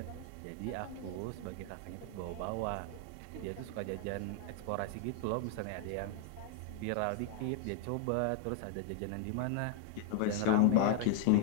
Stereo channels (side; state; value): both; different; correlation 0.00